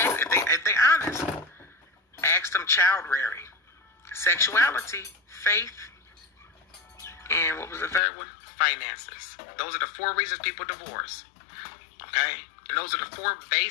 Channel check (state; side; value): drops out; right; at 8.0 s